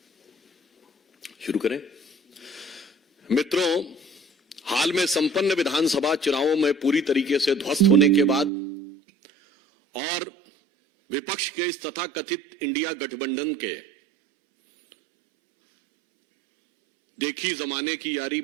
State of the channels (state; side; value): drops out; left; at 8.5 s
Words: शुरू करें। मित्रों, हाल में संपन्न विधानसभा चुनावों में पूरी तरीके से ध्वस्त होने के बाद और विपक्ष के इस तथाकथित इंडिया गठबंधन के देखी जमाने की यारी